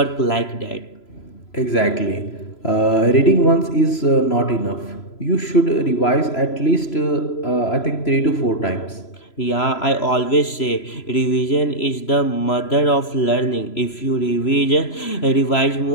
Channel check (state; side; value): late; right; 3.0 ms